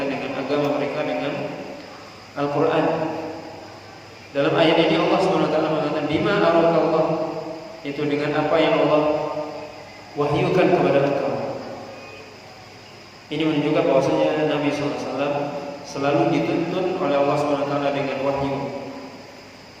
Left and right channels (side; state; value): both; identical; correlation 1.00